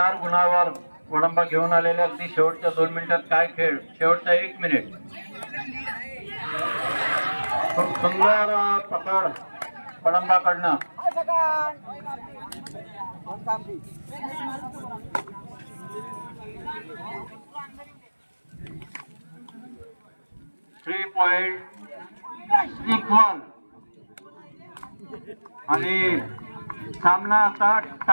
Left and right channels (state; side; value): inverted; both; correlation -1.00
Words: गुणावर वडंबा घेऊन आलेल्या अगदी शेवटच्या 2 मिनिटात काय खेळ. शेवटचा 1 मिनिट. खूप सुंदर पकड वडंबाकडनं. 3 पॉइंट इक्वल आणि सामना आता